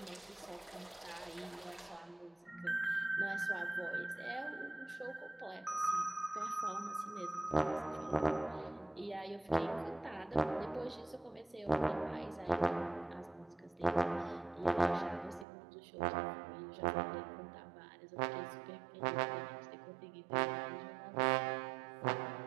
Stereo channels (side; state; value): left; drops out; at 15.5 s